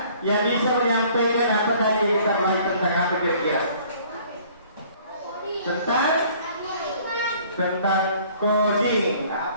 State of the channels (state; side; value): inverted; both; correlation -0.55